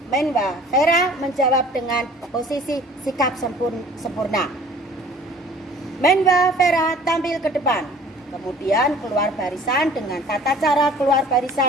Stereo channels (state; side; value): normal; both; correlation 0.49